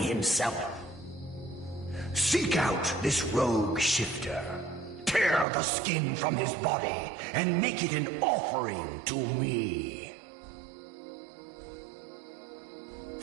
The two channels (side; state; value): left; drops out; at 5.5 s